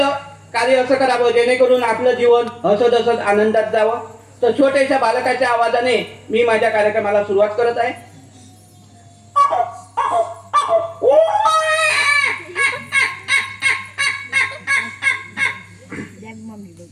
कार्य असं करावं जेणेकरून आपलं जीवन हसत हसत आनंदात जावं. तर छोट्याशा बालकाच्या आवाजाने मी माझ्या कार्यक्रमाला सुरुवात करत आहे.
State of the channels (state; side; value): identical; both; correlation 1.00